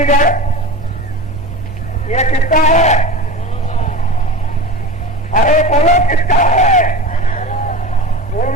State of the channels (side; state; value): right; noise; hum, 15 dB below the sound